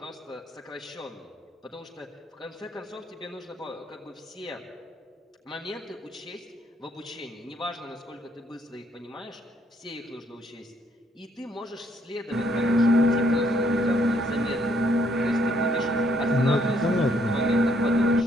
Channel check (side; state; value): both; normal; correlation 0.69